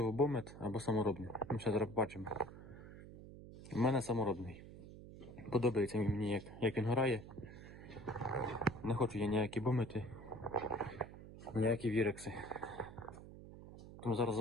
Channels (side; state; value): right; noise; hum, 15 dB below the sound